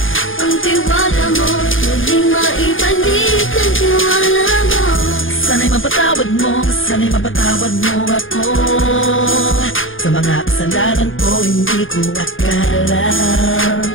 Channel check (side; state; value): right; late; 0.58 ms